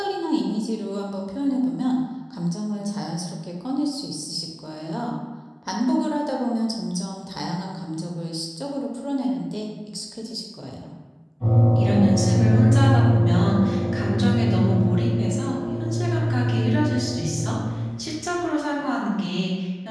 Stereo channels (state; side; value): identical; both; correlation 1.00